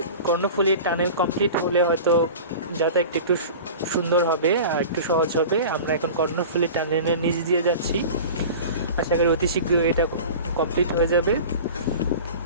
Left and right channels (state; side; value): inverted; both; correlation -0.36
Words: কর্ণফুলী টানেল কমপ্লিট হলে হয়তো যাতায়াত একটু সুন্দর হবে আর একটু সহজ হবে। আমরা এখন কর্ণফুলী টানেলের নিচ দিয়ে যাচ্ছি, আশা করি অতি শীঘ্রই এটা কমপ্লিট হয়ে যাবে।